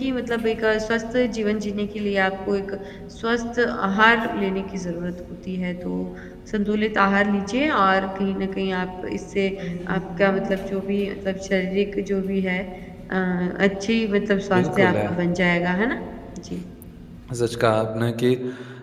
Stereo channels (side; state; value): both; identical; correlation 1.00